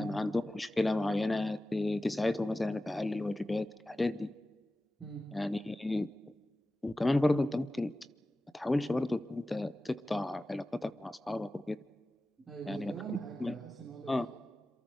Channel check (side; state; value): both; normal; correlation 0.95